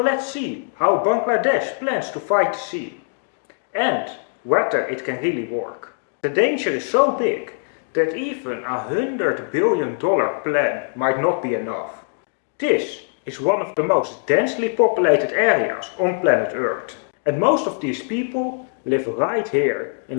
see how Bangladesh plans to fight the sea, and whether it can really work. The danger is so big that even $100 billion plan might not be enough. This is one of the most densely populated areas on planet Earth, and most of these people live right here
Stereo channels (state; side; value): silent; right; digital silence